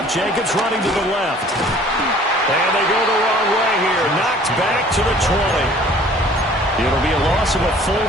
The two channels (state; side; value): normal; both; correlation 0.52